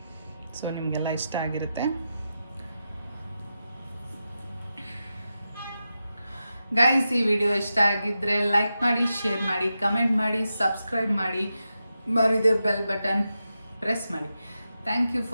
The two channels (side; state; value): both; inverted; correlation -0.90